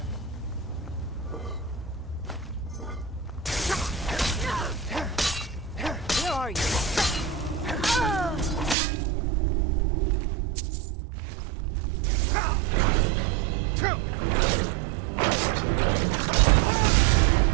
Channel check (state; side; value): drops out; left; at 8.8 s